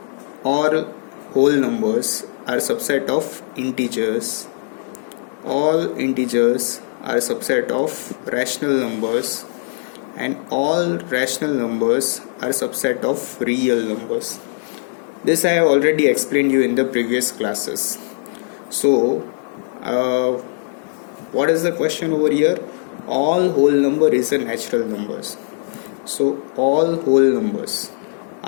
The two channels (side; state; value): right; silent; 66 dB below the other